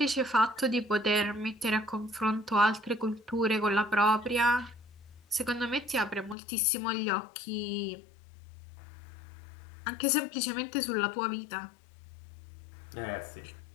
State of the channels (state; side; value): drops out; right; at 6.4 s